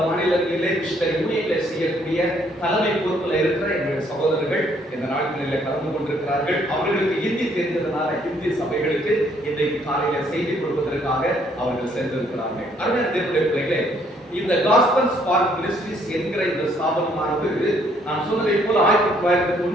மாநிலங்களிலே மிஷனரி ஊழியர்களை செய்யக்கூடிய தலைமை பொறுப்பில் இருக்கிற எங்களுடைய சகோதரர்கள் இந்த நாட்களில் கலந்து கொண்டிருக்கிறார்கள். அவர்களுக்கு ஹிந்தி தெரிந்ததுனால ஹிந்தி சபைகளுக்கு இன்றைக்கு காலையில செய்தி கொடுப்பதற்காக அவர்கள் சென்றிருக்கிறார்கள். அருமையான தேவனுடைய பிள்ளைகளே, இந்த காஸ்பல் ஸ்பார்க் மினிஸ்ட்ரீஸ் என்கிற இந்த ஸ்தாபனமானது நான் சொன்னதை போல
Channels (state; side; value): normal; both; correlation 0.66